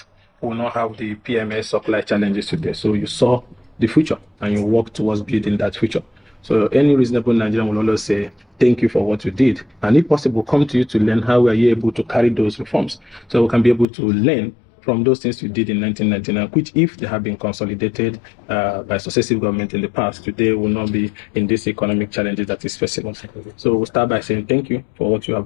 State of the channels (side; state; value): right; drops out; at 13.9 s